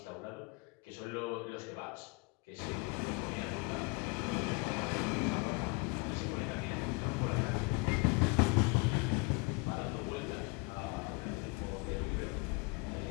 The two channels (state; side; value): quieter; right; 29.3 dB